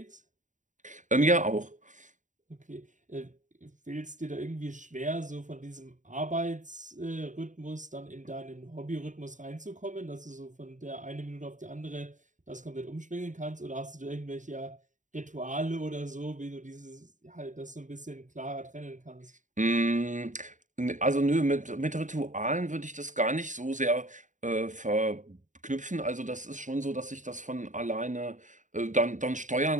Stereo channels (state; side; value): late; left; 0.36 ms